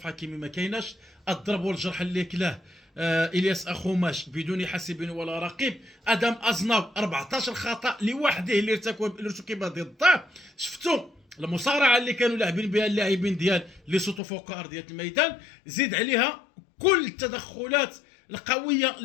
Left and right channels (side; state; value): right; drops out; at 14.2 s